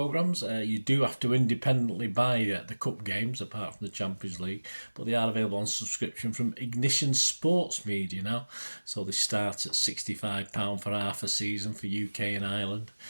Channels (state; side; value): inverted; both; correlation -1.00